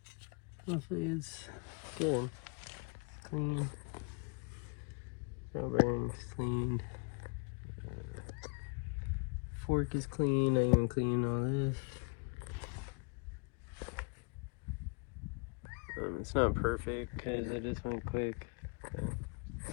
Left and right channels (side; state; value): right; quieter; 34.1 dB